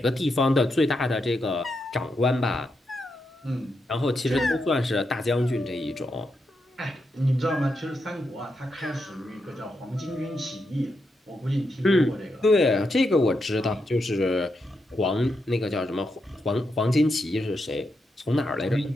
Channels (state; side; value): normal; both; correlation 0.84